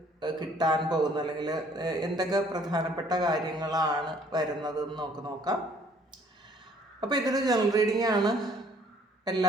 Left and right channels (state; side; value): normal; both; correlation 0.60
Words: കിട്ടാൻ പോകുന്നത്, അല്ലെങ്കിൽ എന്തൊക്കെ പ്രധാനപ്പെട്ട കാര്യങ്ങളാണ് വരുന്നതെന്ന് നോക്കാം. അപ്പോൾ ഇതൊരു ജനറൽ റീഡിംഗ് ആണ്.